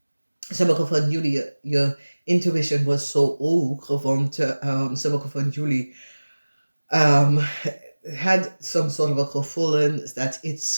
Sommige van jullie, je intuition was zo hoog, want sommige van jullie had some sort of a gevoel dat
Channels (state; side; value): inverted; both; correlation -1.00